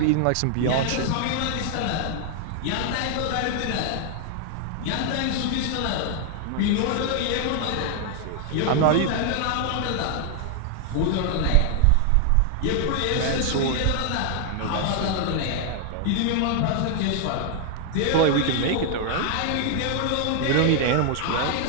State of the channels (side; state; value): both; different; correlation 0.00